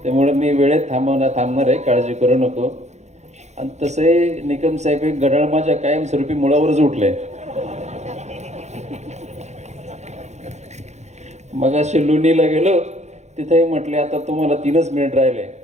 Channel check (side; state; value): left; late; 0.33 ms